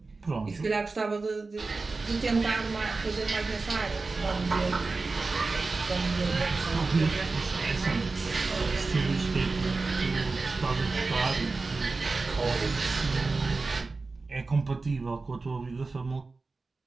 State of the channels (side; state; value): left; quieter; 3.8 dB